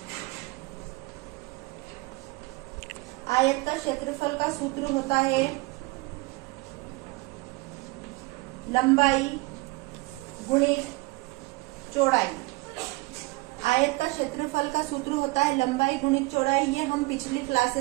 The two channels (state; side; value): quieter; left; 23.7 dB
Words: क्षेत्रफल का सूत्र होता है लंबाई गुणित चौड़ाई। आयत का क्षेत्रफल का सूत्र होता है लंबाई गुणित चौड़ाई। ये हम पिछली